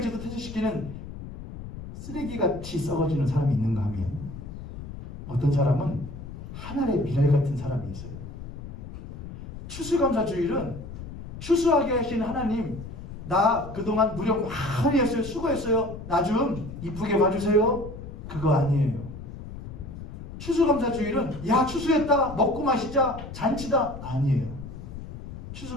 퇴치시키는 쓰레기같이 썩어지는 사람이 있는가 하면 어떤 사람은 하늘의 미랄 같은 사람이 있어요. 추수감사주일은 추수하게 하신 하나님 나 그동안 무력 많이 했어요. 수고했어요. 나 좀 이쁘게 봐주세요. 그거 아니에요. 추수감사주일은 야 추수했다 먹고 마시자 잔치다 아니에요.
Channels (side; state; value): left; noise; rumble, 11 dB below the sound